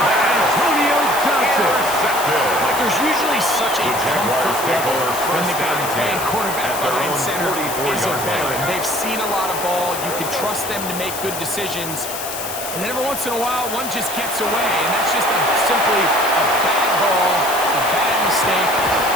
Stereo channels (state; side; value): noise; left; hiss, 7 dB below the sound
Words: Antonio Johnson. Like, there's usually such a comfort level when the guy playing quarterback behind center is a veteran. They've seen a lot of ball. You can trust them to make good decisions. And then every once in a while, one just gets away. And that's just simply a bad ball, a bad mistake.